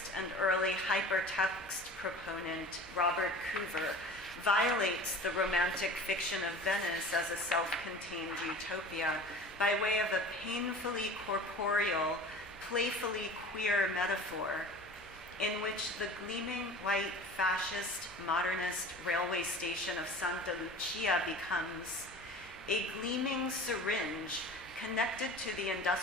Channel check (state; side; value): normal; both; correlation 0.39